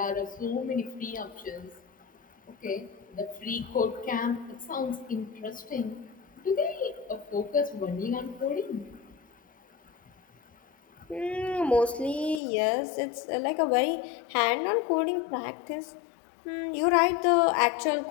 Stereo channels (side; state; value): right; drops out; at 12.4 s